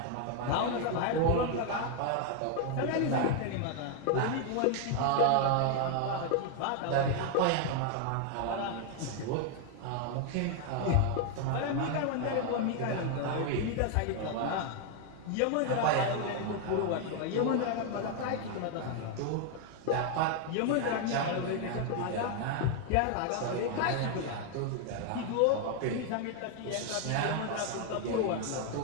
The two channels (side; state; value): both; different; correlation 0.00